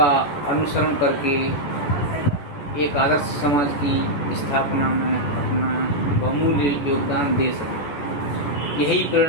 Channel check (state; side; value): late; right; 13 ms